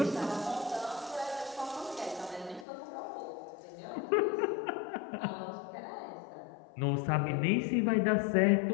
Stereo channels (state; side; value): drops out; right; at 2.7 s